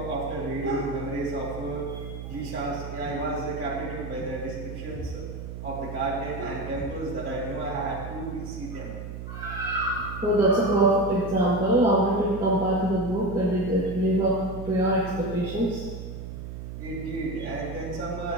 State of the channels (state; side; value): noise; right; hum, 8 dB below the sound